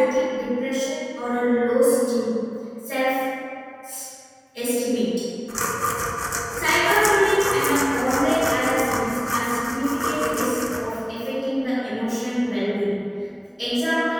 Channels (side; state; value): both; identical; correlation 1.00